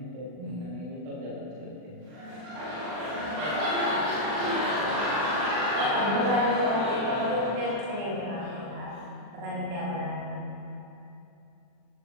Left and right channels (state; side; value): late; left; 40 ms